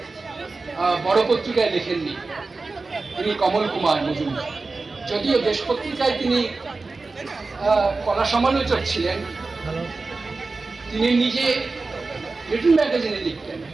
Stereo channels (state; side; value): quieter; left; 3.8 dB